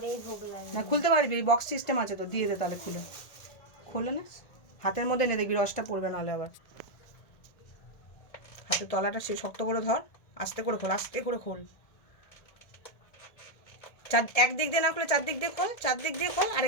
ভোগ লাগে। না, খুলতে পারবি, বক্স সিস্টেম আছে তো, দিয়ে দে তাহলে খুলে। খোলে না, হাতের মধ্যে নে, দেখবি রসটা পড়বে, নাহলে আবার। হাতের তলাটা সে শক্ত করে ধর, আস্তে করে খোল, আস্তে করে খোল। একদিক দিয়ে না খুলে চারদিক দিয়ে খোল, চারদিক দিয়ে খোল,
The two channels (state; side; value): late; right; 1.7 ms